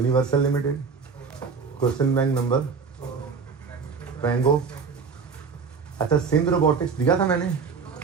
Limited. Question bank number ट्रैंगो। अच्छा, सिंध रोबोटिक्स दिया था मैंने,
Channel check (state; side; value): quieter; left; 5.5 dB